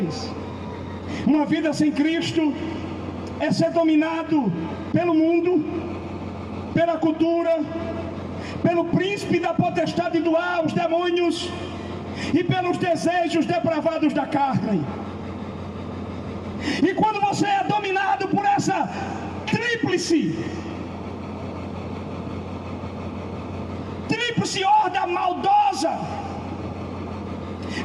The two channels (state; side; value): identical; both; correlation 1.00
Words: Uma vida sem Cristo é ser dominado pelo mundo, pela cultura, pelo príncipe da potestade do ar, os demônios, e pelos desejos depravados da carne. E quando você é dominado por essa tríplice horda maldosa,